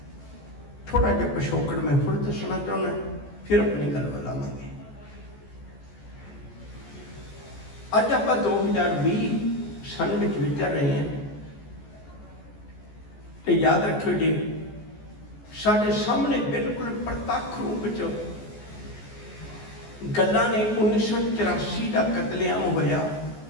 थोड़ा जिहा पिछोकड़ मैं फिर दसना चाहना, फिर अपनी गल बुलावांगे। अज आप 2020 सन में विचर रहे हैं, तो याद रखियो जी साढ़े सामने बिल्कुल प्रत्यक्ष रूप च गल्लां ने 1984 का कतलेआम होया,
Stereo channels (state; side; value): late; right; 14 ms